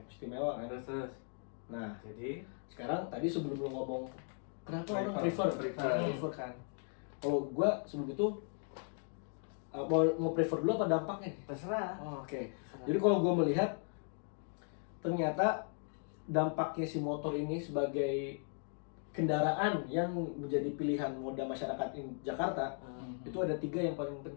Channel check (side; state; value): right; silent; 53 dB below the other